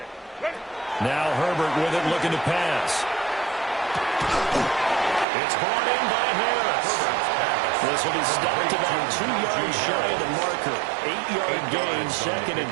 Now Herbert with it, looking to pass. It's brought in by Harris. This will be stopped about 2 yards shy of the marker. 8-yard gain, 2nd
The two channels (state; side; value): drops out; left; at 5.2 s